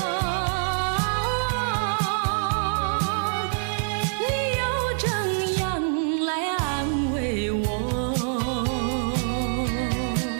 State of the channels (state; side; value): silent; left; digital silence